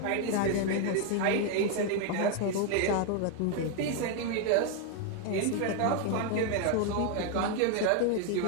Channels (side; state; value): both; different; correlation 0.01